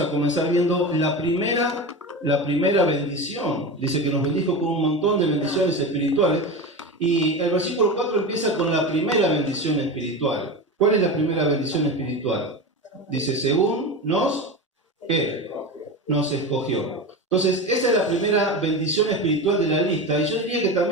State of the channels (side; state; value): both; normal; correlation 0.24